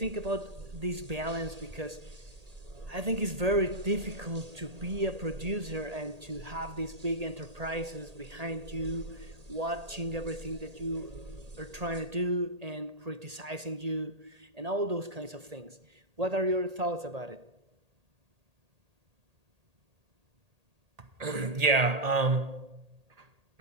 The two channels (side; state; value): left; late; 1.8 ms